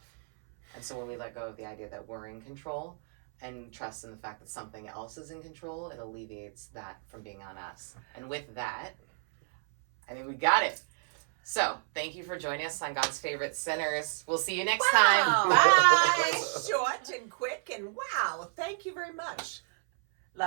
And so when we let go of the idea that we're in control and trust in the fact that something else is in control, it alleviates that from being on us. And with that, I think we got it. So, thank you for joining us on God's Favorite Sinners. We'll see you next time. Bye! Short and quick, and wow, thank you very much.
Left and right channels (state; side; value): silent; left; 57 dB below the other